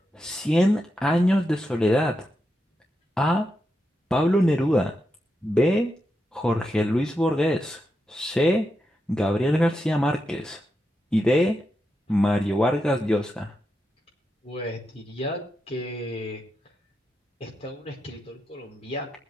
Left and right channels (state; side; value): normal; both; correlation 0.86